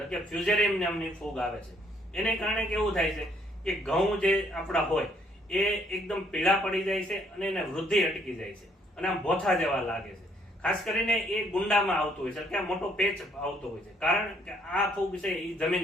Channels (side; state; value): both; normal; correlation 0.67